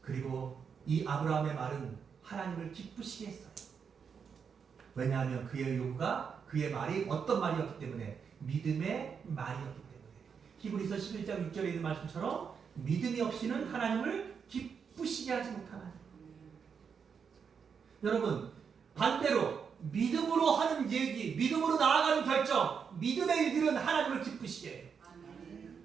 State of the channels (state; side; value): quieter; left; 6.5 dB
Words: 그리고 이 아브라함의 말은 하나님을 기쁘시게 했어요. 왜냐하면 그의 요구가 그의 말이 어떤 말이었기 때문에 믿음의 말이었기 때문에 히브리서 11장 6절에 있는 말씀처럼 믿음이 없이는 하나님을 기쁘시게 하지 못하나니. 여러분, 반대로 믿음으로 하는 얘기, 믿음으로 나아가는 결정, 믿음의 일들은 하나님을 기쁘시게 해요.